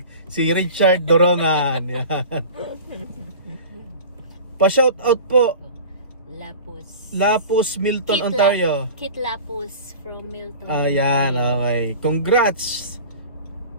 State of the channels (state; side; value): inverted; both; correlation -0.38